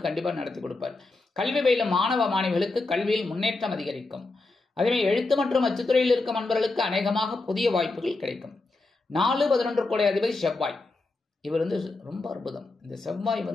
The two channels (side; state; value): right; quieter; 3.3 dB